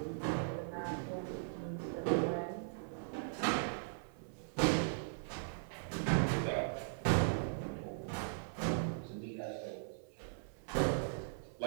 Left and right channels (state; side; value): silent; left; 52 dB below the other